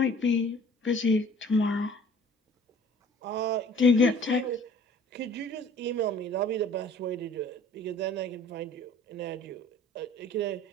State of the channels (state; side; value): normal; both; correlation 0.51